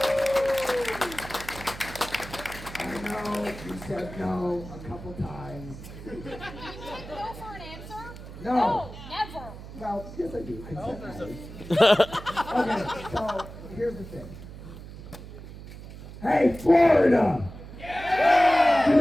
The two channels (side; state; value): right; noise; hum, 14 dB below the sound